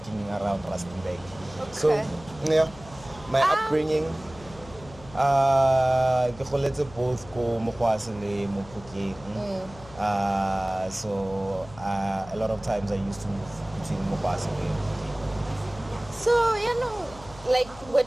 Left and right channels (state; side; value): noise; left; hum, 19 dB below the sound